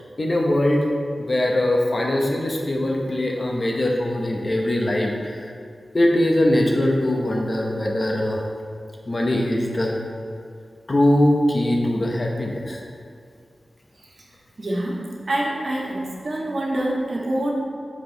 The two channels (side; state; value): both; normal; correlation 0.95